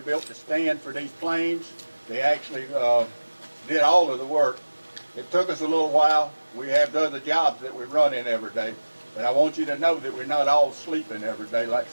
built the stand for these planes. They actually did all of the work. It took us a little while. We have other jobs that we run in every day. But I want you to know that we're not all sleeping every day like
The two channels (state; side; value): inverted; both; correlation -1.00